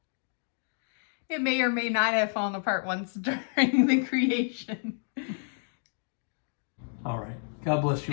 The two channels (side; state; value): right; silent; 58 dB below the other